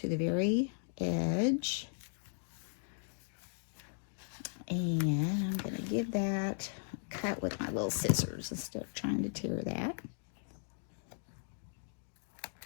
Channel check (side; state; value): right; silent; digital silence